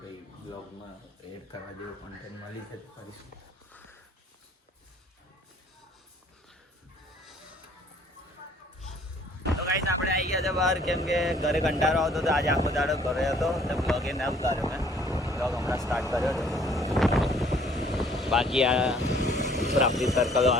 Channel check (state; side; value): normal; both; correlation 0.58